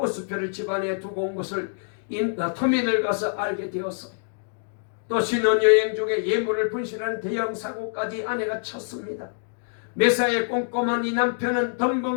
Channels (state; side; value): silent; right; digital silence